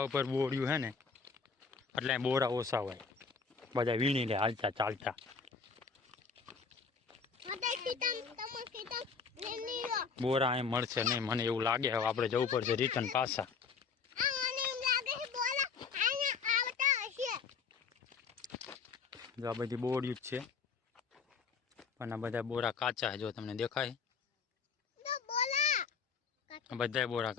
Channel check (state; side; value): quieter; right; 5.5 dB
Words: ઉપર બોર્યું છે ને એટલે બોરા ઓછા હોય, બધા વીણી લે હાલતા ચાલતા. બોરા અહીં મળશે નહીં મને એવું લાગે. હવે આપણે જવું પડશે રિટર્ન પાછા. જો આ બધી બોર્યું જ છે પણ આ બધા બોરા કાચા છે. જો તમને દેખાય બધા બોરા